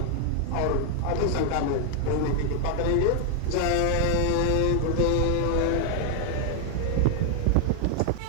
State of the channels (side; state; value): both; different; correlation 0.00